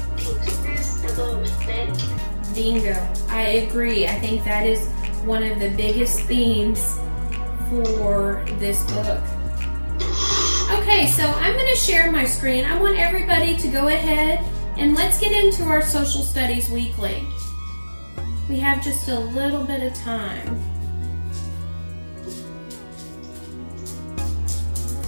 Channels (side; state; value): both; inverted; correlation -1.00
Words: about respect. Bingo. I agree. I think that is one of the biggest themes for this book. Okay, so I'm going to share my screen. I want everybody to go ahead and let's get into our social studies weekly. We have just a little bit of time.